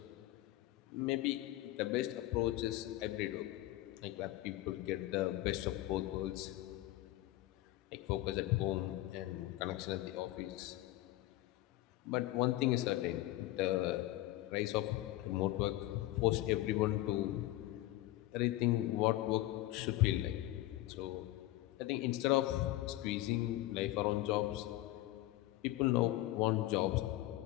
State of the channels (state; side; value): quieter; right; 16.4 dB